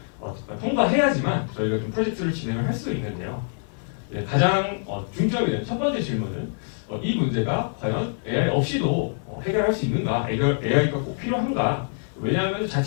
통과해야지만 저희가 좀 프로젝트를 진행을 할 수 있는데요. 가장 중점이 되는 첫 번째 질문은 이 문제가 과연 AI 없이도 해결할 수 있는가? AI가 꼭 필요한가? 왜냐하면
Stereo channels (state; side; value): silent; right; digital silence